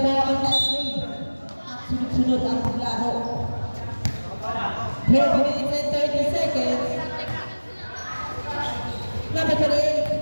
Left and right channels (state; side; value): inverted; both; correlation -1.00